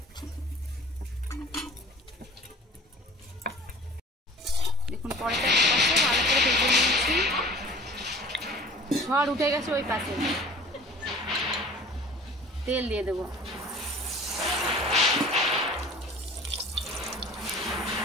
দেখুন পরোটা পাশে ভালো করে ভেজে নিয়েছি, ঝড় উঠে গেছে ওই পাশে। তেল দিয়ে দেবো।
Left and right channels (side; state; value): both; normal; correlation 0.44